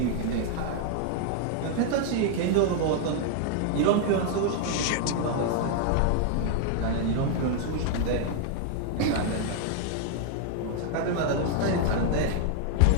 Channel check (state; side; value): different; both; correlation 0.00